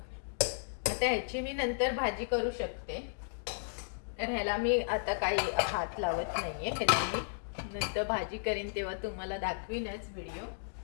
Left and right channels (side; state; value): right; silent; digital silence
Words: आता ह्याची मी नंतर भाजी करू शकते. तर ह्याला मी आता काही हात लावत नाहीये. ह्याला मी नंतर भाजी करीन तेव्हा तुम्हाला दाखवीनच व्हिडिओ.